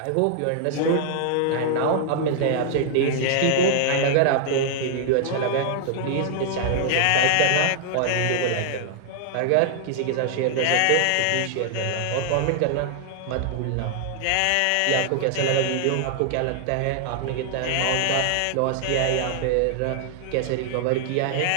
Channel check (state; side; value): different; both; correlation -0.01